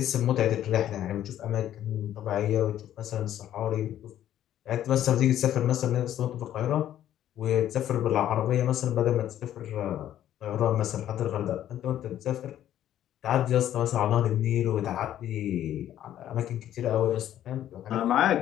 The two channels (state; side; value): quieter; right; 11.7 dB